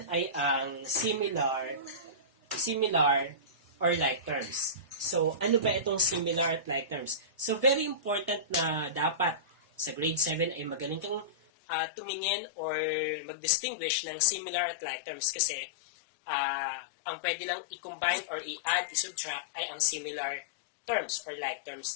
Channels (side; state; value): right; drops out; at 11.4 s